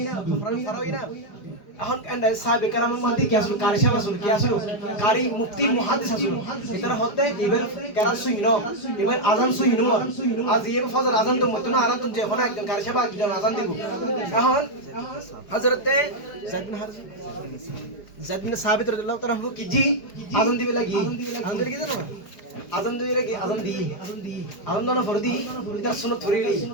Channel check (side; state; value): right; late; 4.9 ms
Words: না ফারাওই না এখন সাহাবে কেরামের মধ্যে কি আসলো কারি সাহেব আসলো কি আসলো কারি মুফতি মুহাদ্দিস আসলো এটার হতে এবার কেরাত সুইন এবার আজান সুইন আজ এবার ফজর আজান তো মতন আরাম তো যে এখন একজন কারি সাহেব একজন আজান দিব এখন হযরতে যায়েদ বিন সাবিত রাদিয়াল্লাহু তাআলা কি জি আজান দিবে লাগি আজান দিবে কি জানো না আজান দিবে লাগি আজান দোনো ফরদি এটার সুন্নাত ধরিলি